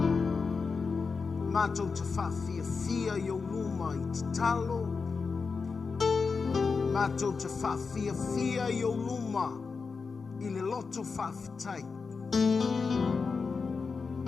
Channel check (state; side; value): quieter; right; 4.9 dB